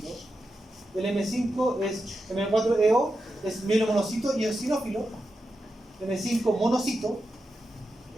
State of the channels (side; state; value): both; normal; correlation 0.89